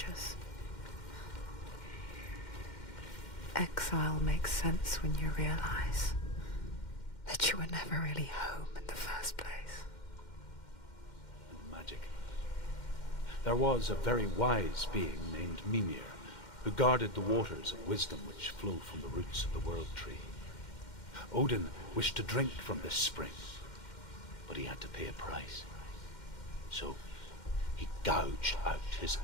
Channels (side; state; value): right; late; 2.1 ms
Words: Exile makes sense when you realize that you were never really home in the first place. And magic. There was a very wise being named Mimir, who guarded the waters of wisdom which flow from the roots of the world tree. Odin wished to drink from this spring, but he had to pay a price. So he gouged out his